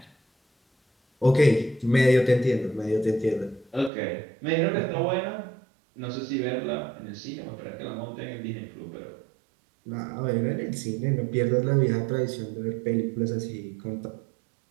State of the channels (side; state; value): left; drops out; at 3.9 s